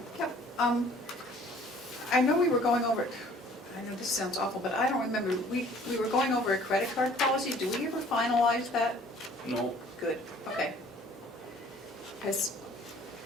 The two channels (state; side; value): normal; both; correlation 0.54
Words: Yeah, I know we were going over, I know this sounds awful, but I don't remember, we were going over a credit card policy, do we ever finalize that? no, Good, okay. Because,